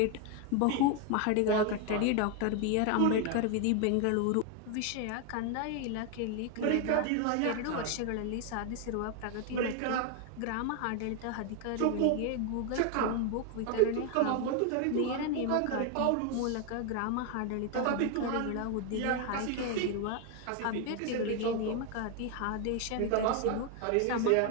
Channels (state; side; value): different; both; correlation 0.01